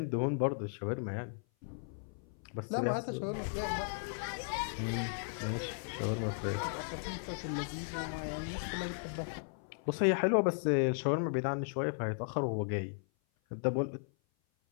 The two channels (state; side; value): silent; right; 54 dB below the other